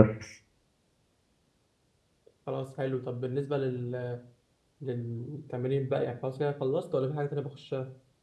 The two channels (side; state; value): both; identical; correlation 1.00